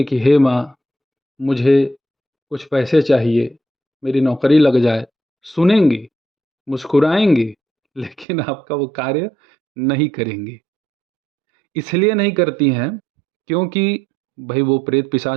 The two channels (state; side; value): drops out; left; at 8.2 s